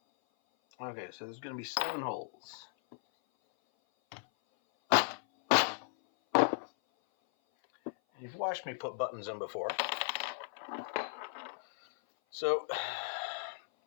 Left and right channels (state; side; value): silent; right; 54 dB below the other